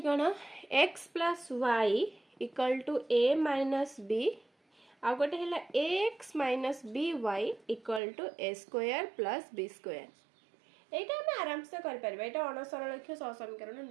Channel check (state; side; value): drops out; left; at 8.0 s